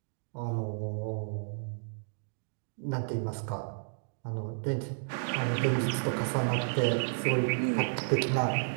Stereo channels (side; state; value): left; silent; digital silence